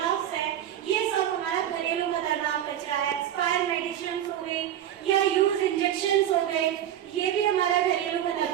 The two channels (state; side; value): quieter; left; 11.0 dB